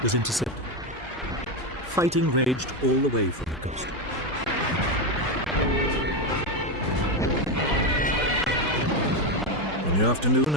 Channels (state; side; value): normal; both; correlation 0.11